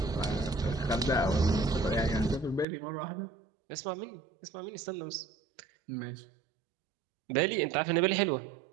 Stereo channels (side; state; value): left; drops out; at 2.7 s